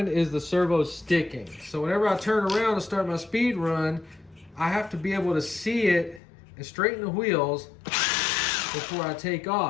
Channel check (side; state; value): right; drops out; at 6.2 s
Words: is the servo sticking. So whenever I turn around to start my speed run, I have to be able to see it and straighten the wheels before I take